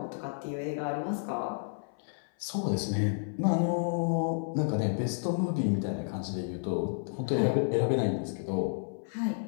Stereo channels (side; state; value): right; silent; 57 dB below the other